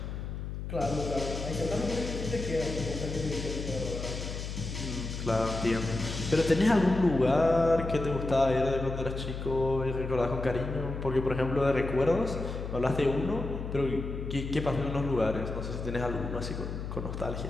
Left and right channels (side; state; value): left; noise; hum, 6 dB below the sound